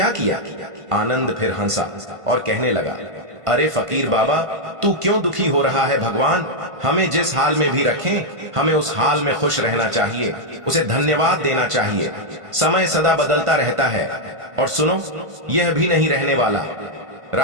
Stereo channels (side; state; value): left; late; 1.5 ms